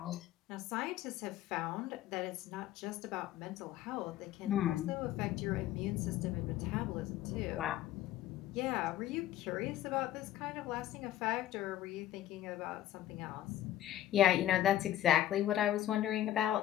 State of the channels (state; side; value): quieter; right; 12.9 dB